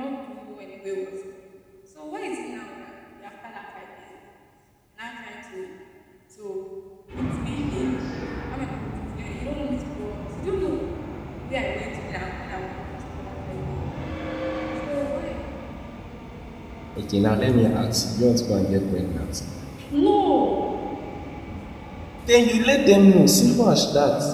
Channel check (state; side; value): identical; both; correlation 1.00